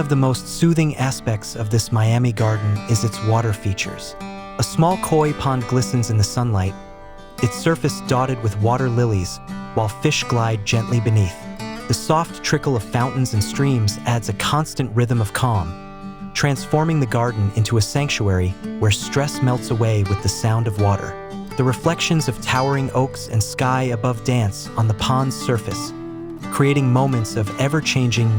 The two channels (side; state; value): both; identical; correlation 1.00